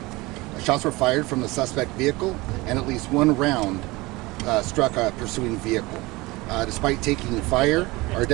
Shots were fired from the suspect vehicle, and at least one round struck a pursuing vehicle. Despite taking fire, our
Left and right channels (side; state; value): left; quieter; 21.9 dB